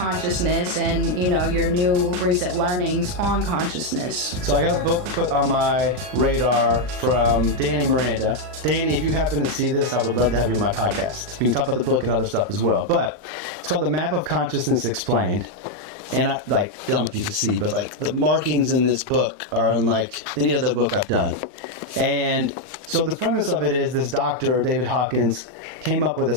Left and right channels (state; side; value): late; left; 39 ms